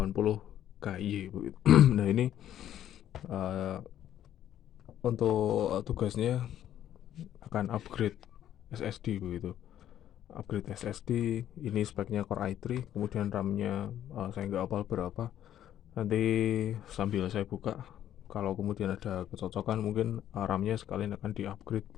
KY begitu. Nah, ini uh, untuk tugasnya akan upgrade SSD begitu. Upgrade SSD ini speknya Core i3, kemudian RAM-nya saya nggak hafal berapa. Nanti sambil saya buka, kalau kemudian ada kecocokan mungkin RAM-nya sekalian akan di-upgrade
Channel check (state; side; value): quieter; right; 11.2 dB